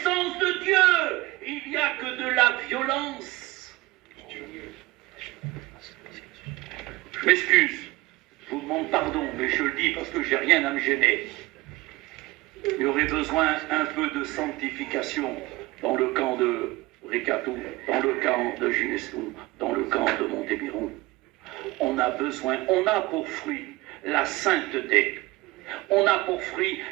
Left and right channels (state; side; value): quieter; left; 20.6 dB